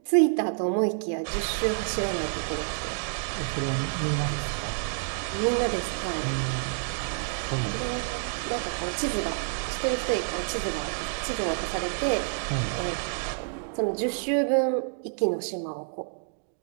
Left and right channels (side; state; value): left; silent; digital silence